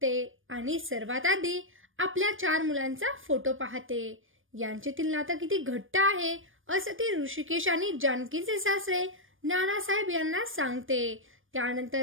आणि सर्वात आधी आपल्या 4 मुलांचा फोटो पाहते। यांच्यातील नातं किती घट्ट आहे असं ती ऋषिकेश आणि जानकीचे सासरे नानासाहेब यांना सांगते। त्यानंतर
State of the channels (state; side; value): late; left; 0.58 ms